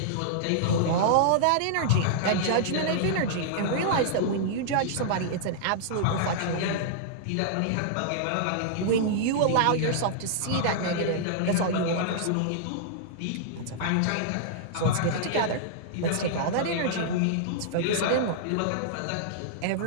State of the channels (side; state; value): both; different; correlation -0.01